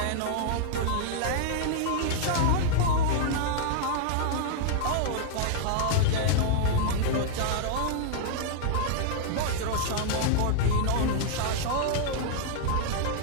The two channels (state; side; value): different; both; correlation -0.01